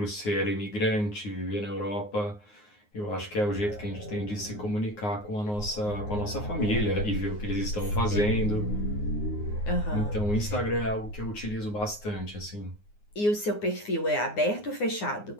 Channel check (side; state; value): right; late; 9.6 ms